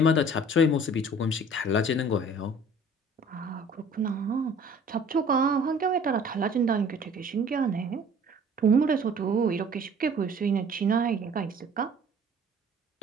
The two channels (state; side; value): normal; both; correlation 0.50